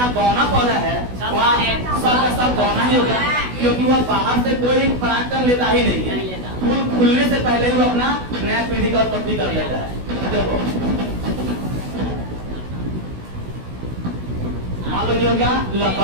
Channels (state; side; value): late; left; 16 ms